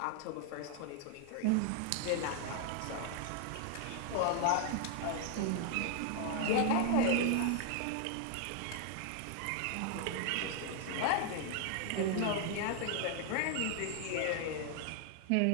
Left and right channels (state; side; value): different; both; correlation 0.00